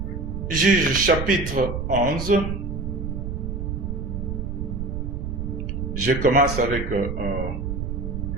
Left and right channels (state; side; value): noise; right; rumble, 4 dB below the sound